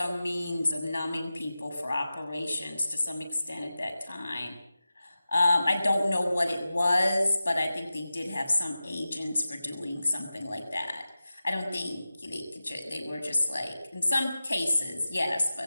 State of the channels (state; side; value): inverted; both; correlation -0.94